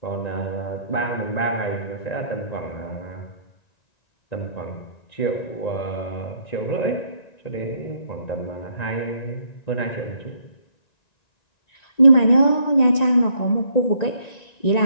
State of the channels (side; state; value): right; late; 1.9 ms